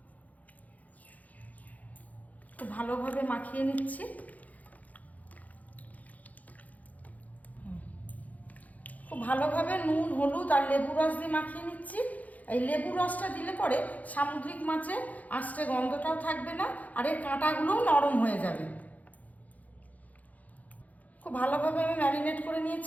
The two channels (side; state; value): right; late; 0.076 ms